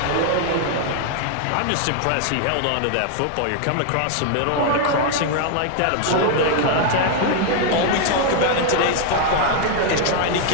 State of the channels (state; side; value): different; both; correlation 0.00